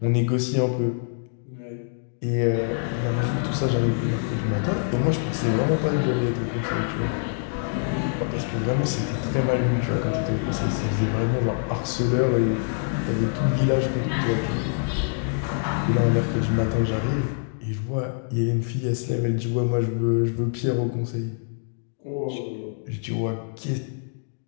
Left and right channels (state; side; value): silent; right; digital silence